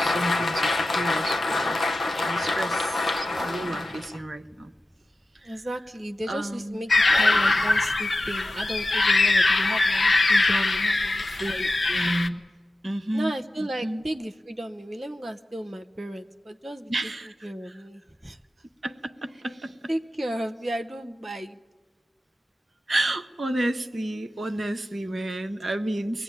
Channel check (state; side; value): normal; both; correlation 0.94